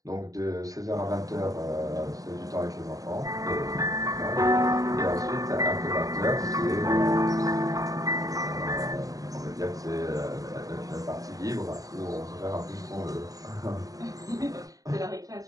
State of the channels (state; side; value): late; left; 0.17 ms